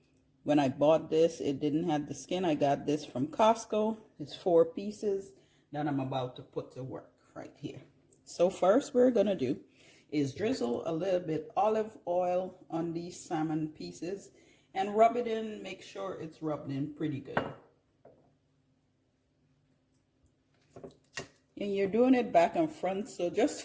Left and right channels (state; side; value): identical; both; correlation 1.00